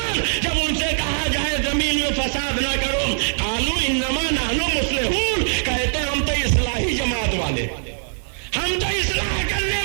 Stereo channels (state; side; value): silent; left; digital silence